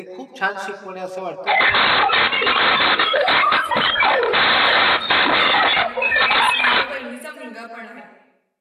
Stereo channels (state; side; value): identical; both; correlation 1.00